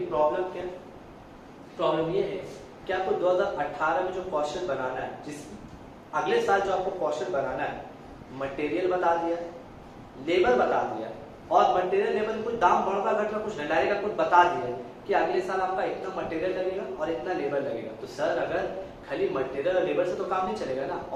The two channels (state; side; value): identical; both; correlation 1.00